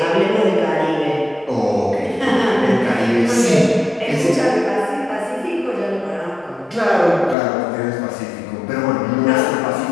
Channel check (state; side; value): drops out; right; at 7.4 s